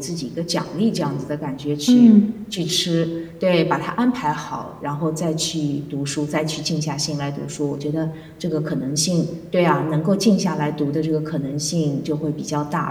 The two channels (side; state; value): both; identical; correlation 1.00